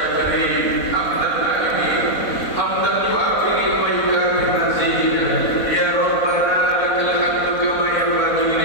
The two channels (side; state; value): right; late; 4.1 ms